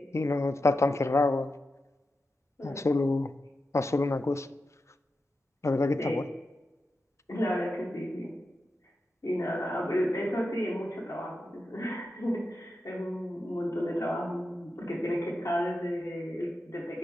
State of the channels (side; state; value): both; normal; correlation 0.89